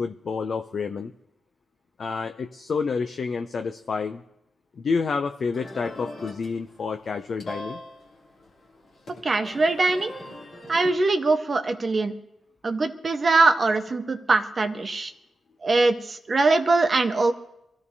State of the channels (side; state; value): both; normal; correlation 0.90